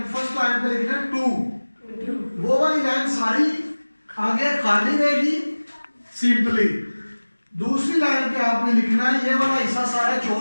फर्स्ट लाइन पे लिखना है टू। वो वाली लाइन सारी आगे खाली रहेगी, सिंपली। दूसरी लाइन पे आपने लिखना है ये वाला हिस्सा सारा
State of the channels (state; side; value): inverted; both; correlation -1.00